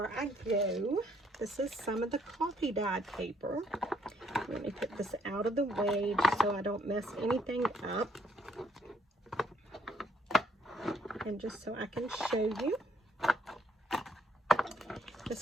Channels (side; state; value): both; normal; correlation 0.68